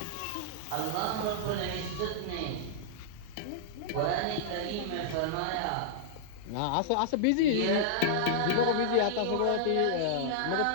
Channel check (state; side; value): different; both; correlation -0.02